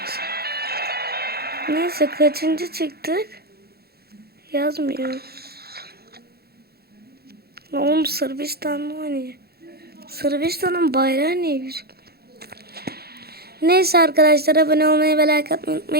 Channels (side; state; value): left; late; 0.46 ms